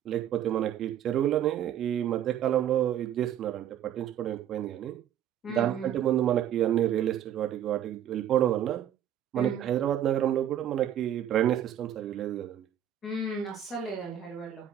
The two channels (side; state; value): left; quieter; 10.4 dB